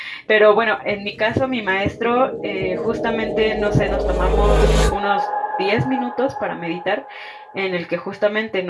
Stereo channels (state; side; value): identical; both; correlation 1.00